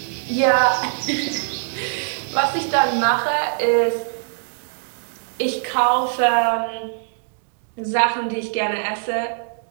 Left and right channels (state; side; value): silent; left; digital silence